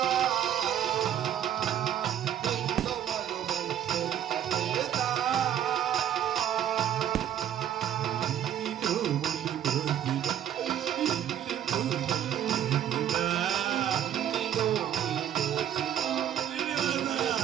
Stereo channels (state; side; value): quieter; left; 10.4 dB